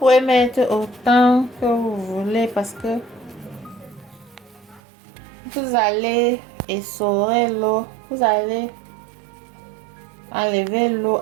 mettre autant que vous voulez parce que vous allez essorer l'eau. Vous allez enlever l'eau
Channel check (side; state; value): left; drops out; at 4.8 s